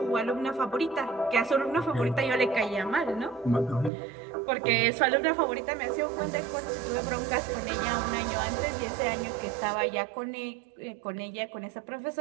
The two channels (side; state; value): left; drops out; at 3.9 s